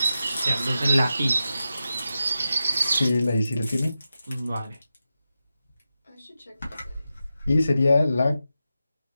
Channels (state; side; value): inverted; both; correlation -0.91